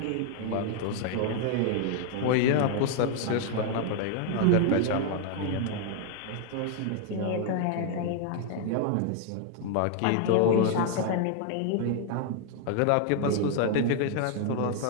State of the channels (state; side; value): different; both; correlation 0.00